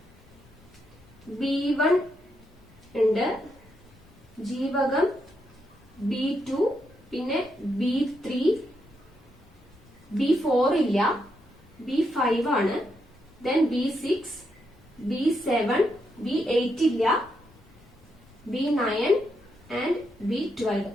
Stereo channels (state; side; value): normal; both; correlation 0.81